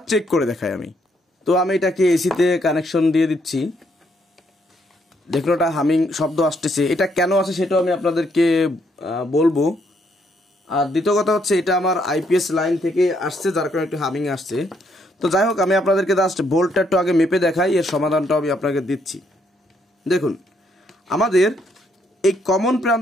চেক করে দেখাই আমি। তো আমি এটাকে এসিতে কানেকশন দিয়ে দিচ্ছি। দেখুন ওটা হামিং শব্দ আসতেছে, এটা কেন আসে সেটাও আমি আপনাদেরকে বলবো। আর দ্বিতীয় কথা হচ্ছে এটা আমার আইপিএস লাইন থেকে আসছে, যার কারণে একটু হামিং আসছে। তো যাই হোক, আমি আপনাদেরকে জাস্ট ভোল্টটা একটু আগে মেপে দেখাই, এর সমাধানটাও আমি আপনাকে দিচ্ছি। দেখুন, আমাদের এই কমন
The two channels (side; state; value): both; normal; correlation 0.73